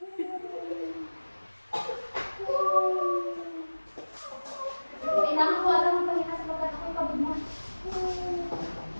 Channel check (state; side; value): inverted; both; correlation -1.00